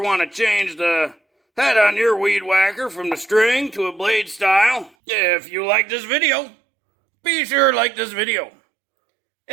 want to change the head on your weed whacker from the string to a blade style. If you like this video, be sure to like this video.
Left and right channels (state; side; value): drops out; left; at 4.9 s